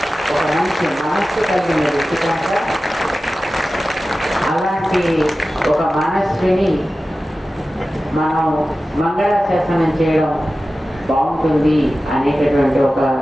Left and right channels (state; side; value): normal; both; correlation 0.95